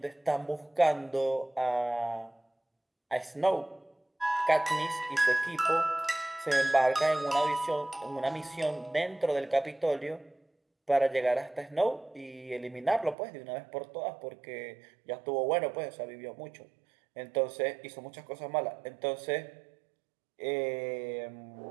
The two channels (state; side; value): drops out; left; at 13.2 s